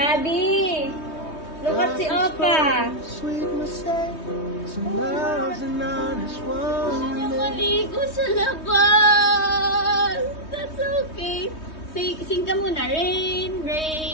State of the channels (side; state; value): right; late; 3.2 ms